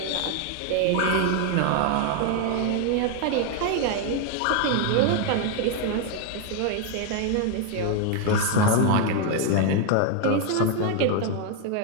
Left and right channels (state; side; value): different; both; correlation 0.01